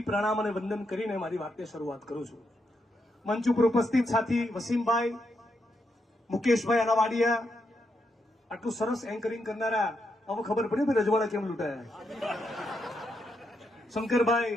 પ્રણામ અને વંદન કરીને મારી વાતની શરૂઆત કરું છું. મંચ ઉપર ઉપસ્થિત સાથી વસીમભાઈ, મુકેશભાઈ અનાવાડિયા, આટલું સરસ એન્કરિંગ કરનારા, હવે ખબર પડી ભાઈ રજવાડા કેમ લૂંટાયા. શંકરભાઈ,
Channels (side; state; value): both; normal; correlation 0.81